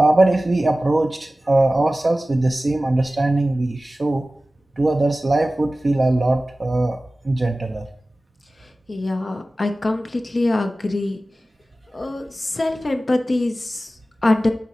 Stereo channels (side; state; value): both; normal; correlation 0.96